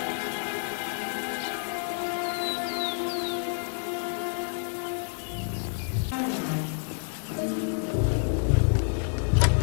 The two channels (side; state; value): right; silent; digital silence